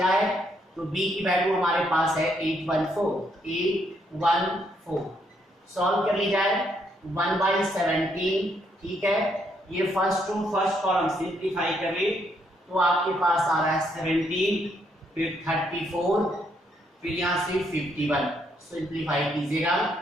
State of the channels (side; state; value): both; normal; correlation 0.73